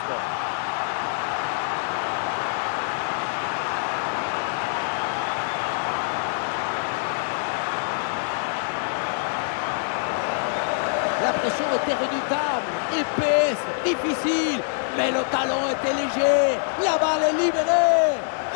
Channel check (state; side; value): silent; right; digital silence